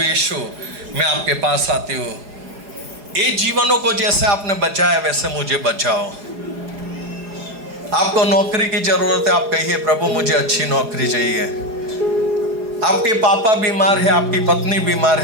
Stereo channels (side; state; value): left; late; 4.9 ms